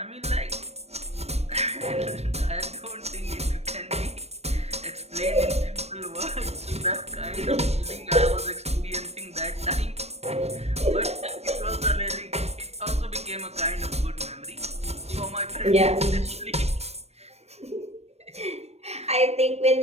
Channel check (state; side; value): late; left; 0.31 ms